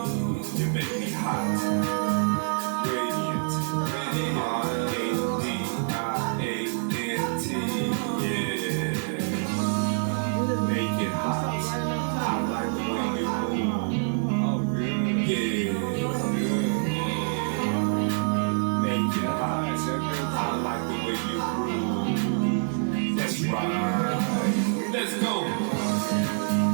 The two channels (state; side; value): silent; left; digital silence